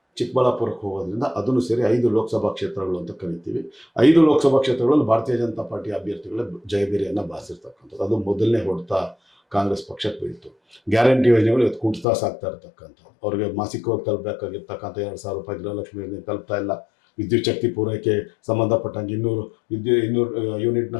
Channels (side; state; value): right; drops out; at 12.1 s